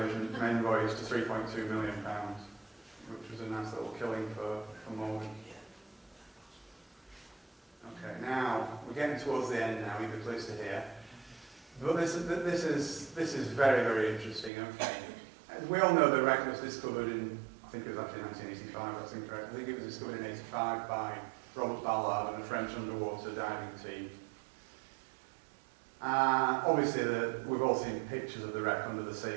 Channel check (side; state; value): left; drops out; at 14.5 s